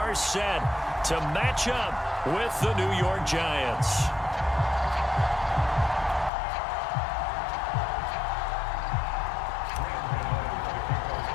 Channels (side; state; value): right; drops out; at 6.3 s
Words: set to match up with the New York Giants.